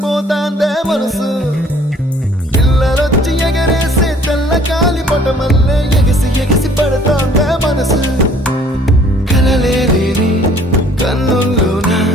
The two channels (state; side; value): normal; both; correlation 0.57